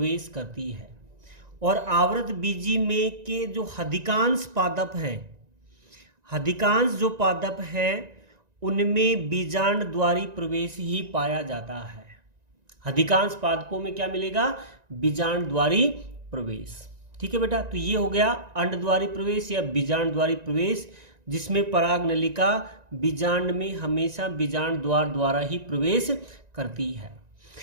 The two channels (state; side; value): late; left; 1.9 ms